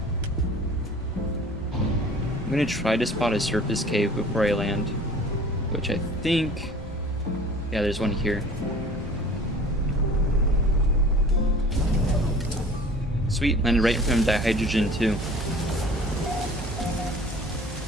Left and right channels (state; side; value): normal; both; correlation 0.46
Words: I'm gonna try to spot a surface cave before I land, which I think, yeah, there's one here. Sweet, landed right in front of dihydrogen too.